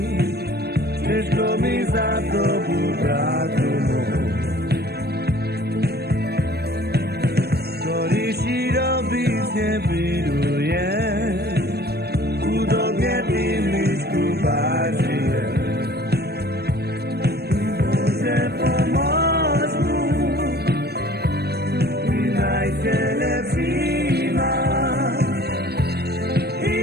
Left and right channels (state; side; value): late; left; 0.47 ms